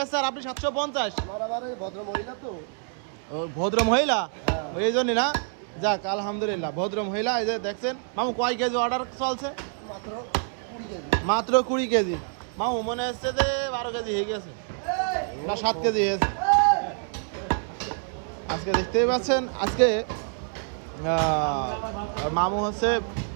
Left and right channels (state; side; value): silent; left; 60 dB below the other